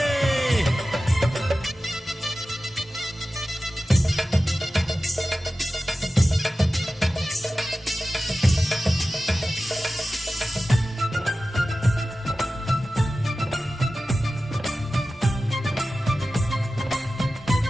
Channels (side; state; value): both; normal; correlation 0.95